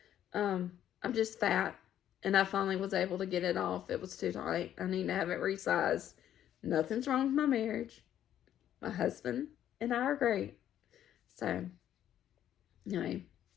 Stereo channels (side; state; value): right; quieter; 11.0 dB